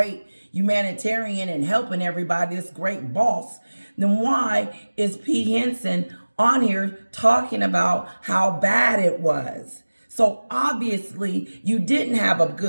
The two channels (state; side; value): inverted; both; correlation -1.00